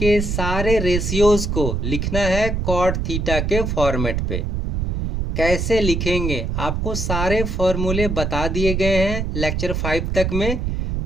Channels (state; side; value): noise; right; rumble, 1 dB below the sound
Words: सारे रेशियोज को लिखना है कॉट थीटा के फॉर्मेट पे। कैसे लिखेंगे आपको सारे फॉर्मूले बता दिए गए हैं लेक्चर 5 तक में।